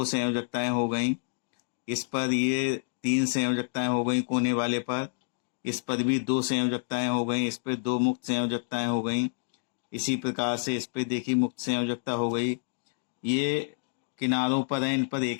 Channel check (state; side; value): silent; right; digital silence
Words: संयोजकताएं हो गई, इस पर ये 3 संयोजकताएं हो गई कोने वाले पर, इस पर भी 2 संयोजकताएं हो गई, इस पे 2 मुक्त संयोजकताएं हो गई। इसी प्रकार से इस पे देखिए मुक्त संयोजकता हो गई। ये किनारों पर है, इन पर